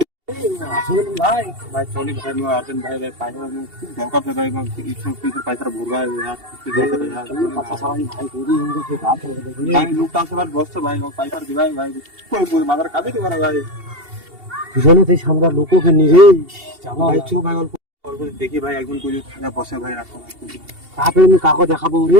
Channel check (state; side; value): late; left; 2.7 ms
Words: ভাই ভাই চলি ভাই, আর্জেন্ট ভাই ভাই পয়সা খুব দরকার ভাই, পয়সা ভরবা ভাই, লোকটা আসে বসছে ভাই, পয়সা দিবাই ভাই, মাথার কাজে দিবা না ভাই। দুজনে সেই সামনে লোককে নিয়ে জামা ভাই চো ভাই, অল্প অল্প দেখি ভাই, একজন কই থাকা বসে ভাই, রাখো কাপে আমি কাকো দেখাবো